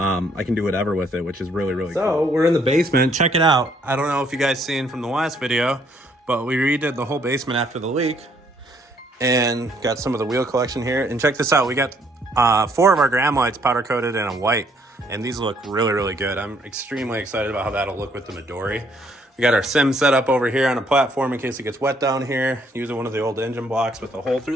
can do whatever with it, which is really cool. So we're in the basement. Check it out. I don't know if you guys seen from the last video, but we redid the whole basement after the leak and got some of the wheel collection here. And check this out. We got 4 of our gram lights powder coated in a white, and these look really good. I'm extremely excited about how that'll look with the Midori. We got our sim set up over here on a platform in case it gets wet down here, using one of the old engine blocks with a hole through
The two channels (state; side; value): normal; both; correlation 0.67